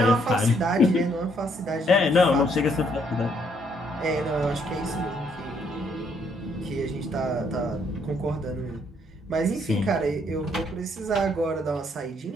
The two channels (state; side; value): normal; both; correlation 0.69